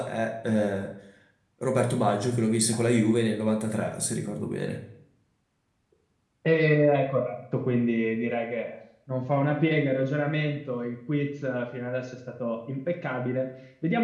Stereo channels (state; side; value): identical; both; correlation 1.00